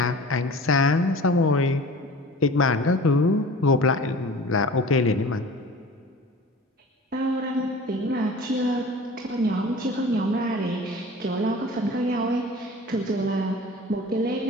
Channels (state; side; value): normal; both; correlation 0.41